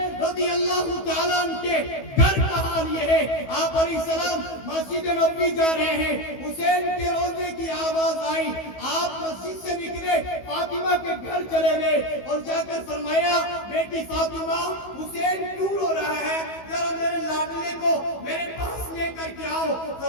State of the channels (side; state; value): right; late; 15 ms